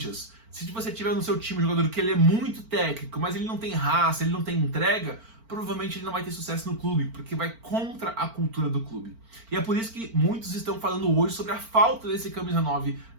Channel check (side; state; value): left; late; 4.4 ms